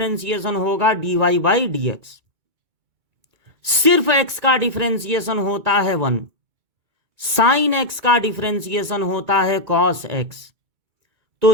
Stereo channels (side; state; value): left; late; 2.3 ms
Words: होगा dy बाई dx, सिर्फ x का डिफरेंशिएशन होता है 1, साइन x का डिफरेंशिएशन होता है कॉस x। तो